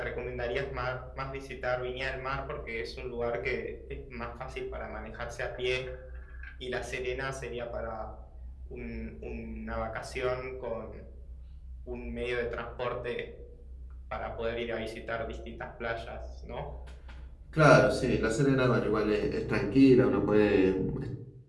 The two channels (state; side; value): identical; both; correlation 1.00